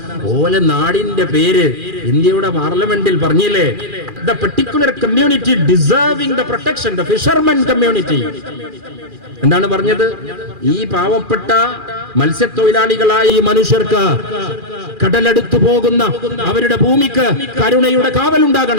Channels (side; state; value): left; late; 2.4 ms